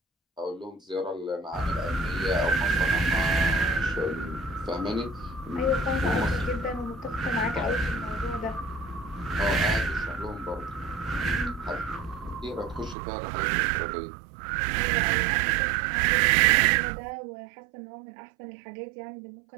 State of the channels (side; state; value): left; drops out; at 13.0 s